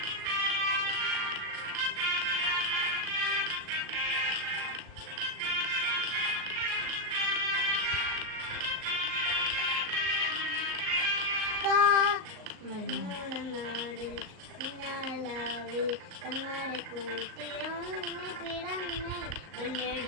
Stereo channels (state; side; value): late; left; 38 ms